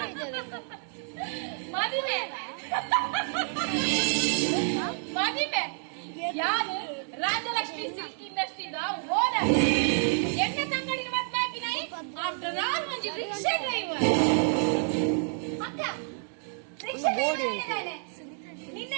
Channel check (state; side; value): silent; left; 57 dB below the other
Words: ಮದುವೆ ಮದುವೆ ಯಾರು ರಾಜಲಕ್ಷ್ಮಿ ಸಿಲ್ಕ್ ಇಂಡಸ್ಟ್ರಿದ ಓನರ್ ಎಣ್ಣೆ ತಂಗಡಿನ ಮದ್ವೆ ಹಾಕಿನಾಯಿ ಆಫ್ಟರ್ ಆಲ್ ಮಂಜಿ ರಿಕ್ಷಾ ಡ್ರೈವರ್ ಅಕ್ಕ ರಿಕ್ಷಾ ಡ್ರೈವರ್